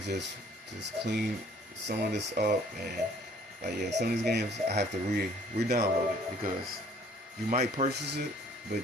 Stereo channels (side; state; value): both; normal; correlation 0.57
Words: just clean some of this up, and like, some of these games I have to re-download it, because you might purchase it, but